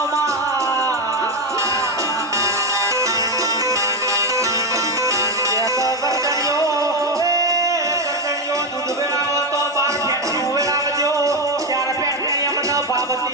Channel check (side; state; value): both; normal; correlation 0.10